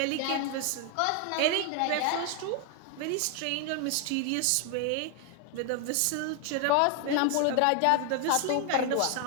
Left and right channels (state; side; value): different; both; correlation 0.00